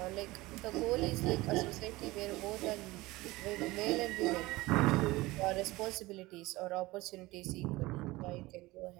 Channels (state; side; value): quieter; left; 20.2 dB